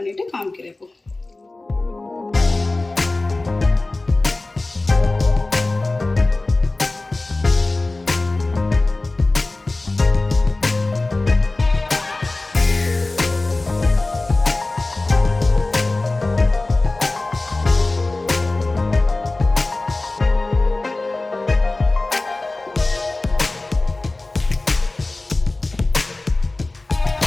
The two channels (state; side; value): quieter; right; 3.1 dB